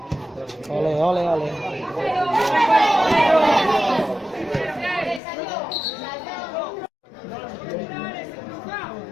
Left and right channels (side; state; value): right; drops out; at 5.2 s